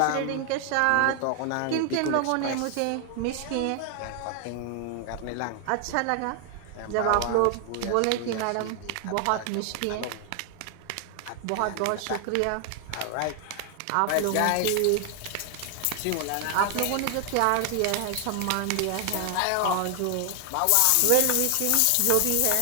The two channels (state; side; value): different; both; correlation 0.00